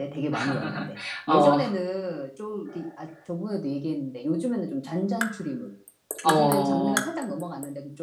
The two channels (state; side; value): identical; both; correlation 1.00